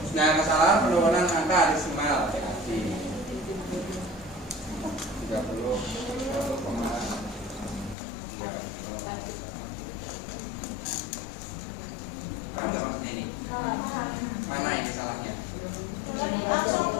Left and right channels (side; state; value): right; drops out; at 8.0 s